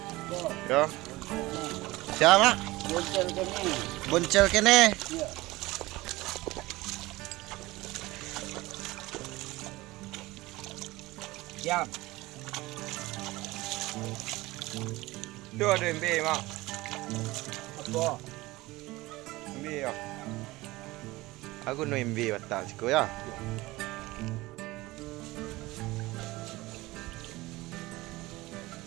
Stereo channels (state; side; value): quieter; left; 19.8 dB